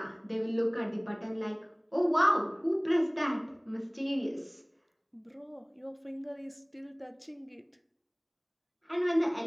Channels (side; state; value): both; identical; correlation 1.00